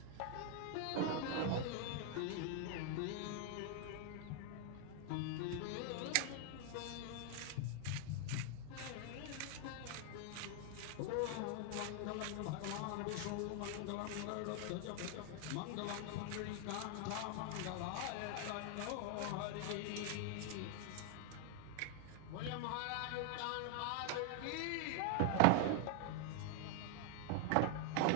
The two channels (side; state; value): both; different; correlation 0.00